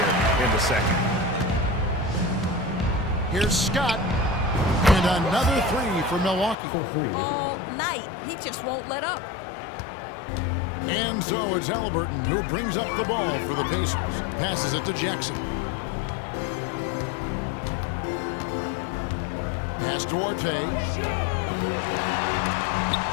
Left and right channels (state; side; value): drops out; right; at 6.6 s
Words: in the second. Here's Scott. And another 3 for Milwaukee. All night. He just won't let up. And so it's Halliburton who brings up the ball for the Pacers. Passes it to Jackson. Pass to Duarte.